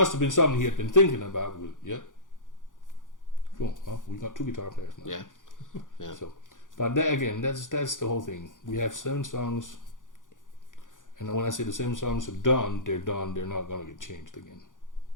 have been something he had been thinking about. Yep. Cool. Well, we got 2 guitar players now. Yeah. Yeah. So, but that, again, that's the whole thing. We have 7 songs, and when I say the 7 songs are done. They're done. They're not gonna get changed again.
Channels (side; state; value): right; late; 0.88 ms